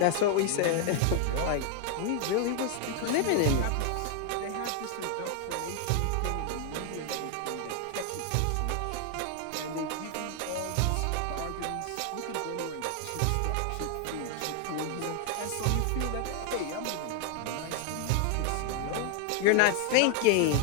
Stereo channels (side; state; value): both; different; correlation 0.00